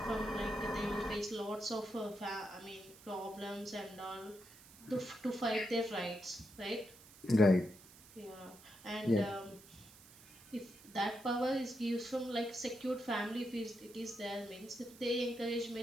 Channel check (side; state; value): right; noise; hiss, 21 dB below the sound